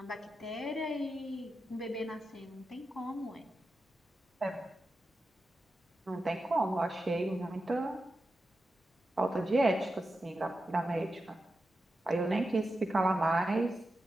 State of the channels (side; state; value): both; normal; correlation 0.90